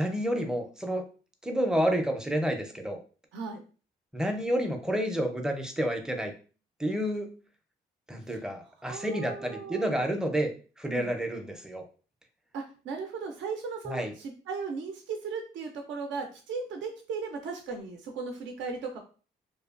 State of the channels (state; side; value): normal; both; correlation 0.76